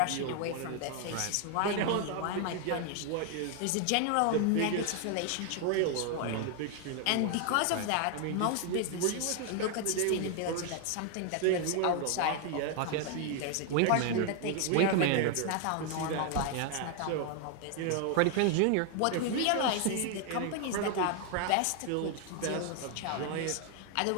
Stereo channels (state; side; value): different; both; correlation 0.00